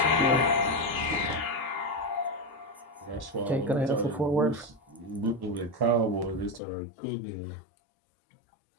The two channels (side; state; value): right; drops out; at 6.6 s